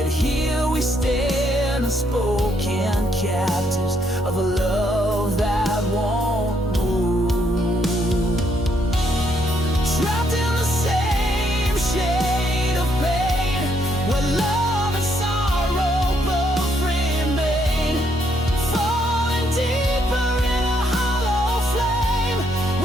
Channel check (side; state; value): both; normal; correlation 0.73